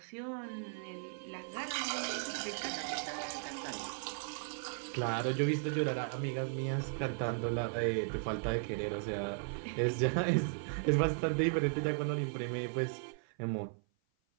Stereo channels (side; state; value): left; silent; 53 dB below the other